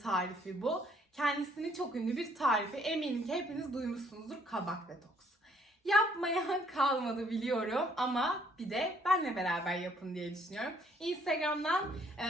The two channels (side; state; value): both; normal; correlation 0.65